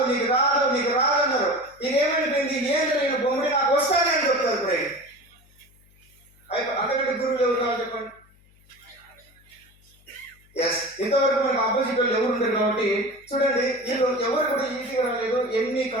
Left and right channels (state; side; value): noise; left; hum, 30 dB below the sound